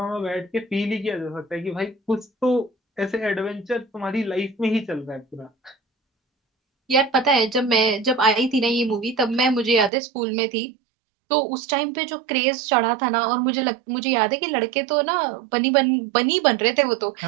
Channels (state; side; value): drops out; left; at 9.9 s